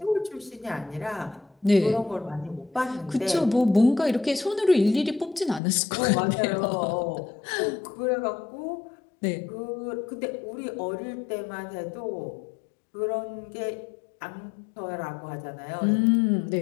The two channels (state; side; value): drops out; right; at 5.6 s